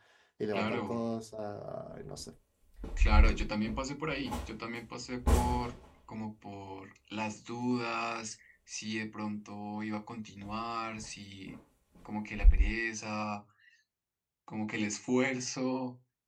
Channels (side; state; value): both; identical; correlation 1.00